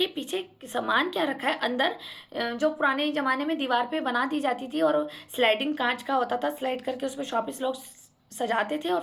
पीछे सामान क्या रखा है अंदर। जो पुराने ज़माने में दीवार पे बना दी जाती थी और स्लाइडिंग कांच का होता था, स्लाइड करके उसमें शॉपीस लोग सजाते थे और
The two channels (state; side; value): identical; both; correlation 1.00